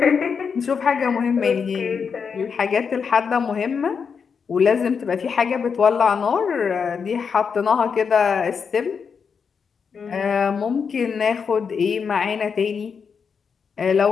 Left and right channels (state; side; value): quieter; right; 6.1 dB